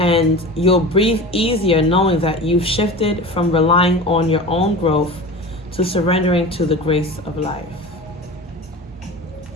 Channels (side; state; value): both; normal; correlation 0.33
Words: you'll breathe easier knowing that you've shifted from relying on your own growth to surrendering to the grace of life.